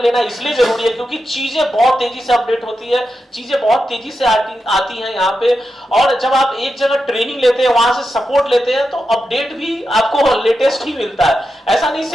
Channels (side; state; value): both; normal; correlation 0.88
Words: लेना इसलिए जरूरी है क्योंकि चीजें बहुत तेजी से अपडेट होती है, चीजें बहुत तेजी से आती हैं यहाँ पे, और जब आप एक जगह ट्रेनिंग लेते हैं, वहां से सपोर्ट लेते हैं, तो अपडेट भी आपको लेटेस्ट ही मिलता है। ऐसा नहीं